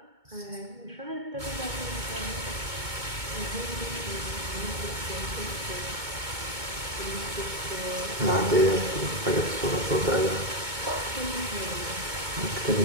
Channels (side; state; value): left; late; 2.2 ms